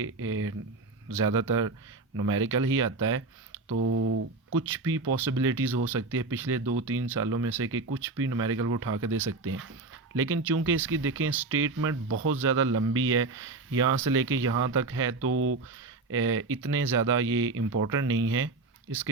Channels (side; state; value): left; quieter; 3.5 dB